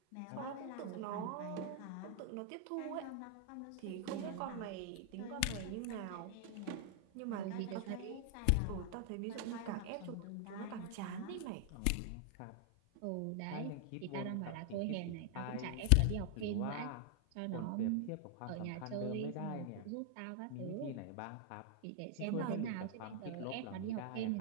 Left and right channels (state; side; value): different; both; correlation 0.00